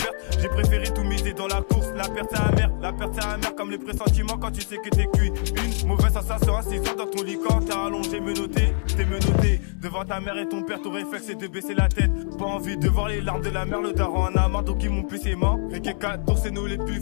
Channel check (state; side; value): silent; right; 63 dB below the other